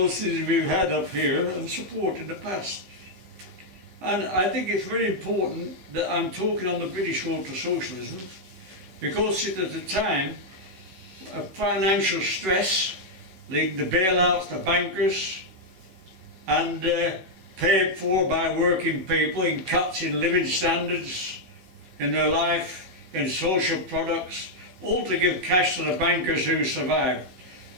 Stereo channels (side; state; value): left; late; 16 ms